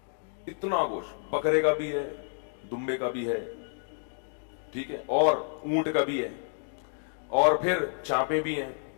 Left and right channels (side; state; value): right; silent; 58 dB below the other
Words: اتنا گوشت بکرے کا بھی ہے, دمبے کا بھی ہے, ٹھیک ہے, اور اونٹ کا بھی ہے, اور پھر چانپے بھی ہیں,